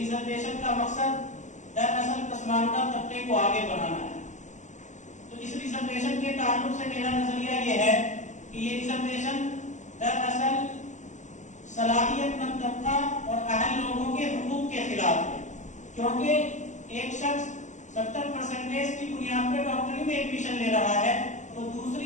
کا مقصد دراصل پسماندہ طبقے کو آگے بڑھانا ہے۔ تو اس ریزرویشن کے تعلق سے میرا نظریہ یہ ہے کہ یہ ریزرویشن دراصل صلاحیت مند طبقہ اور اہل لوگوں کے حقوق کے خلاف ہے، کیونکہ ایک شخص 70% کی بنیاد پر ڈاکٹری میں ایڈمیشن لے رہا ہے تو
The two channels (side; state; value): right; late; 0.35 ms